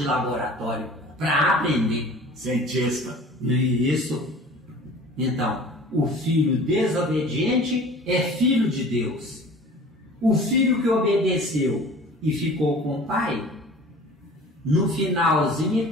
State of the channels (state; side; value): normal; both; correlation 0.44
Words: laboratório, para aprender. Cientista. Isso. Então, o filho desobediente é filho de Deus. O filho que obedeceu e ficou com o pai, no finalzinho